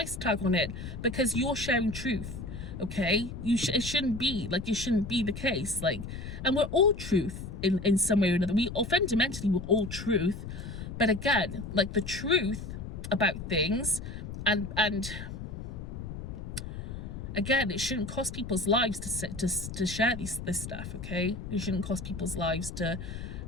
tag on it because you're sharing truth. Okay, it shouldn't be like, it shouldn't be the case. Like, and we're all truth in some way or another. Fundamentally we're all truth, but again, like, the truth about things, and again, it shouldn't cost people's lives to share this stuff. Okay, it shouldn't cost people's lives to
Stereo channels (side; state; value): left; noise; rumble, 8 dB below the sound